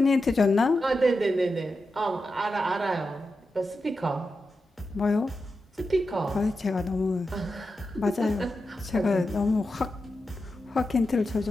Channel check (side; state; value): both; normal; correlation 0.89